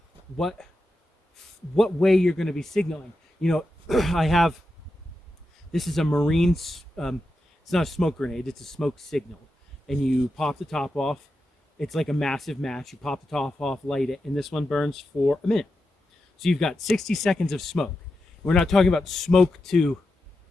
what way you're going to be signaling. You know, I have This is a marine, it's not a smoke grenade, it's a smoke signal. And you pop the top off. It's like a massive match. You pop the top off, light it, and this one burns for a minute. So you've got 60 seconds of smoke. We're not talking about smoke to,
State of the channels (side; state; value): both; normal; correlation 0.89